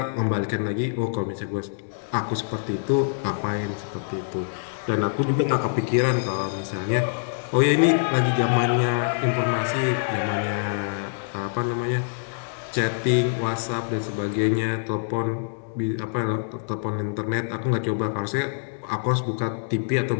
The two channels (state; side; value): silent; right; digital silence